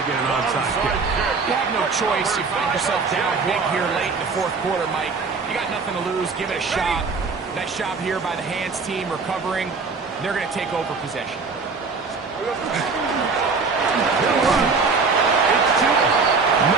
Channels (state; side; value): quieter; left; 4.6 dB